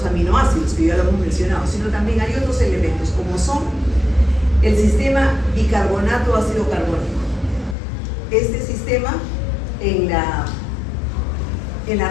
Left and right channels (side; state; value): right; drops out; at 7.8 s